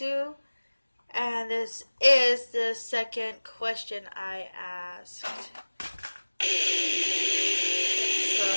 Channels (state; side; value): inverted; both; correlation -1.00